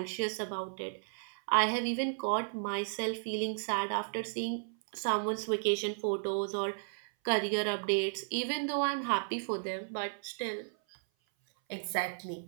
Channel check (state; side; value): silent; left; 55 dB below the other